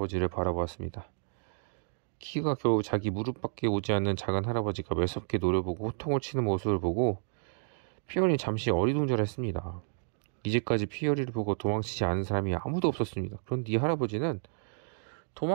바라보았습니다. 키가 겨우 자기 무릎밖에 오지 않는 작은 할아버지가 매섭게 노려보고 호통을 치는 모습을 보고 피어리는 잠시 어리둥절했습니다. 이제까지 피어리를 보고 도망치지 않은 사람이 아무도 없었습니다. 그런데 이 할아버지는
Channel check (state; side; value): silent; left; digital silence